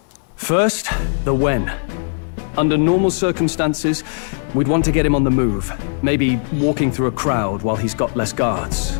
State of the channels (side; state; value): right; silent; 64 dB below the other